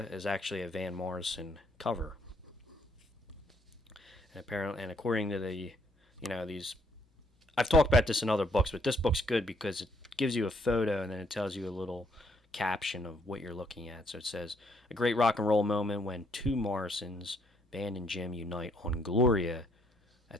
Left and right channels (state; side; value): normal; both; correlation 0.69